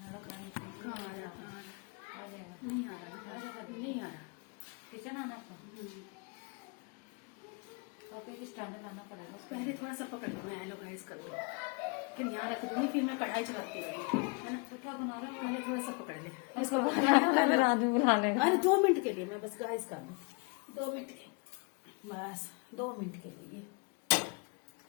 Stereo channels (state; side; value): quieter; right; 31.7 dB